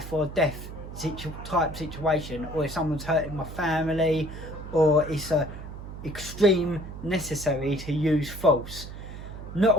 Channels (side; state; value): right; noise; hum, 11 dB below the sound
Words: or death type situation, or if someone's hurting my family, or it's a extreme necessary to use force. Not